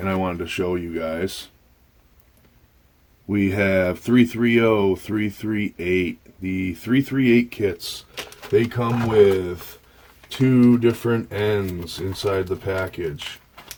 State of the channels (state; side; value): identical; both; correlation 1.00